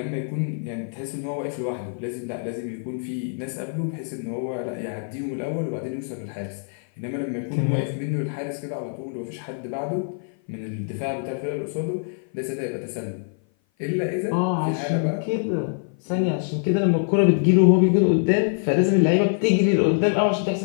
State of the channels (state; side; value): silent; right; 57 dB below the other